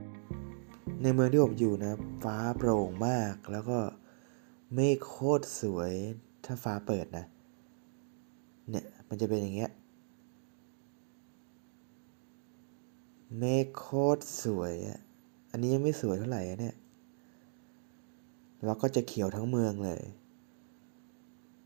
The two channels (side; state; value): left; silent; digital silence